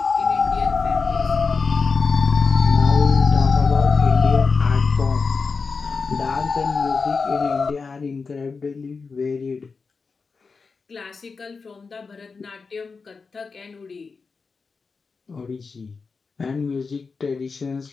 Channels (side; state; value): right; quieter; 4.7 dB